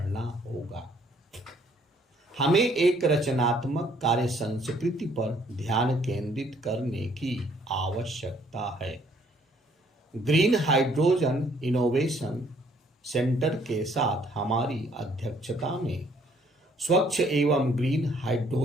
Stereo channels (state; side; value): normal; both; correlation 0.64